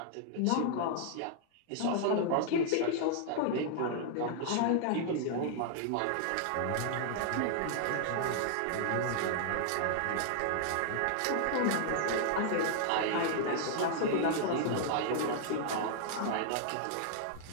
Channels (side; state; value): both; different; correlation -0.01